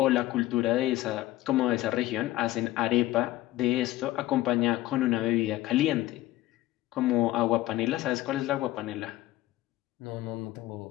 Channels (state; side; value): quieter; right; 16.1 dB